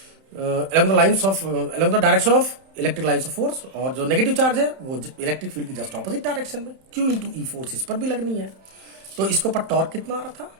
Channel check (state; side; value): late; left; 31 ms